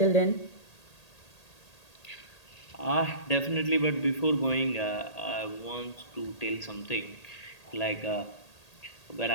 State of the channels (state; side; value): late; right; 1.8 ms